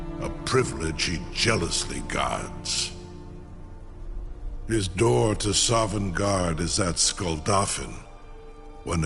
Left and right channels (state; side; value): identical; both; correlation 1.00